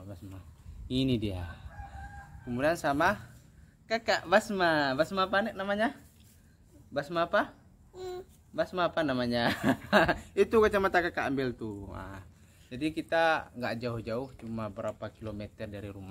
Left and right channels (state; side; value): identical; both; correlation 1.00